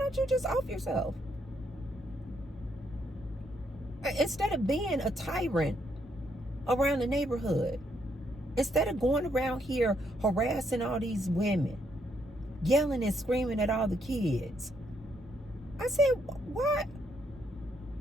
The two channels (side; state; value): both; normal; correlation 0.74